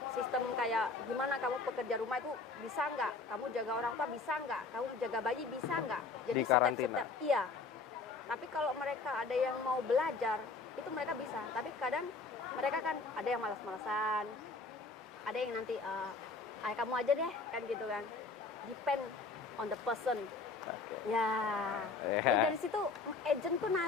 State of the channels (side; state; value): right; quieter; 4.1 dB